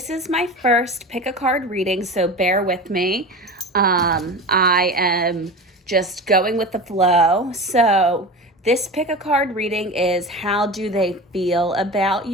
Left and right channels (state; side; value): normal; both; correlation 0.30